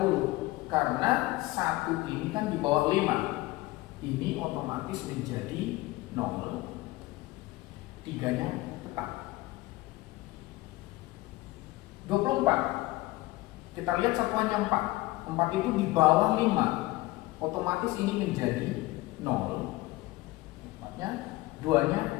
karena 1 ini kan di bawah 5. Ini otomatis menjadi 0, 3-nya tetap. 24, kita lihat satuannya 4. 4 itu di bawah 5, otomatis ini menjadi 0, 4-nya, 2-nya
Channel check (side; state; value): right; quieter; 19.5 dB